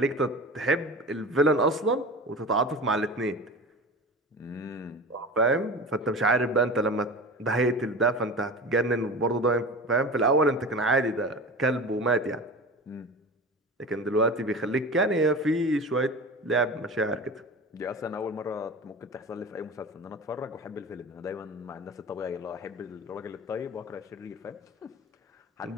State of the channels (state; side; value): normal; both; correlation 0.33